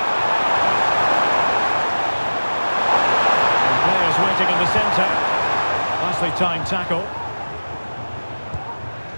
Waiting in the centre. Nicely timed tackle.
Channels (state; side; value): inverted; both; correlation -1.00